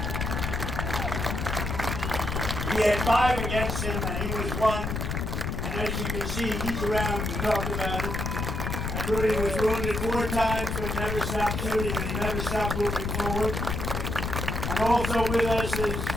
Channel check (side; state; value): left; noise; rumble, 2 dB below the sound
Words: He had 5 against him, and he was 1. And as you can see, he's around to talk about it. And Rudy was wounded 4 times, but never stopped shooting, and he never stopped moving forward. And also with us is